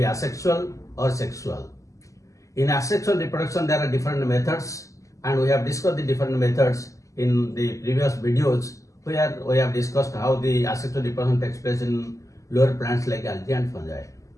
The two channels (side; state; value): right; late; 0.16 ms